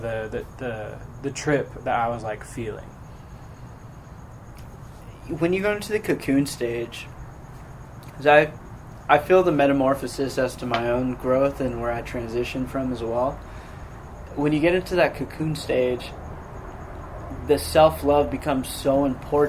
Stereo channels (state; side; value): identical; both; correlation 1.00